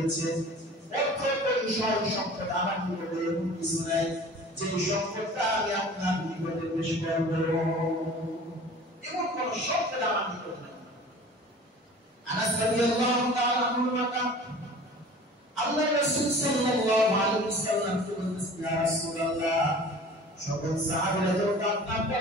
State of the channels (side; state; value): both; normal; correlation 0.43